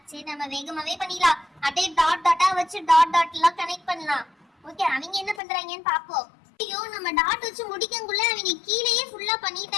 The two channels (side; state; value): right; drops out; at 5.4 s